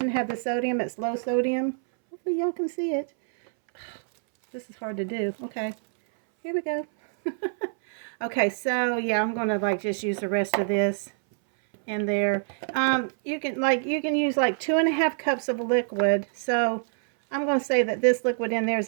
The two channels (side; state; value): left; silent; 61 dB below the other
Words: have the sodium. It's low sodium. Hopefully y'all can see it. This is hard to do. Okay, here we go. Okay, so yeah, I'm gonna like just use the rest of this in there. You can use like 2.5 cups of liquid. So I'm gonna say that this liquid in there is